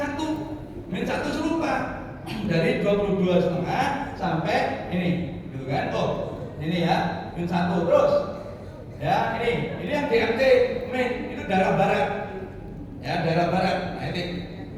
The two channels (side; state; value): both; identical; correlation 1.00